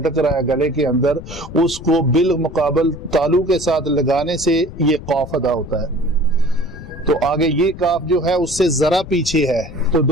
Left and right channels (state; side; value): noise; left; rumble, 13 dB below the sound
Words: رہا ہے گلے کے اندر، اس کو بالمقابل تالو کے ساتھ لگانے سے یہ قاف ادا ہوتا ہے۔ تو آگے یہ کاف جو ہے اس سے ذرا پیچھے ہے، تو